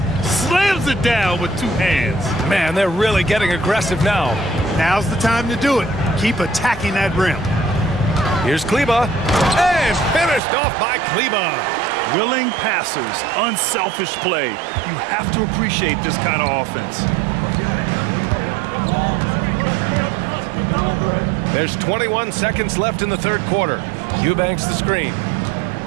Slams it down with 2 hands. Man, they're really getting aggressive now. Now's the time to do it. Keep attacking that rim. Here's Kleba. And finished off by Kleba. Willing passers, unselfish play. You have to appreciate this kind of offense. There's 21 seconds left in the third quarter. Eubanks the screen.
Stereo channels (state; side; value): drops out; left; at 10.4 s